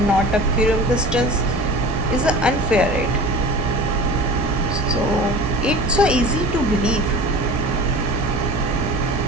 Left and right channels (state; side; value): normal; both; correlation 0.37